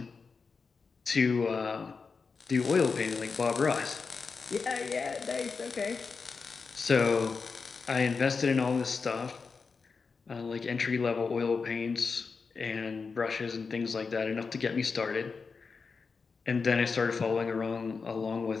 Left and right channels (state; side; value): quieter; right; 4.9 dB